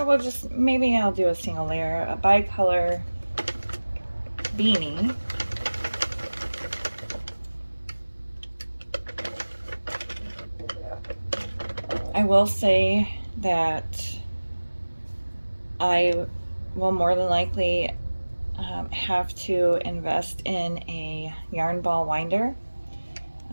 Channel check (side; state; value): both; inverted; correlation -1.00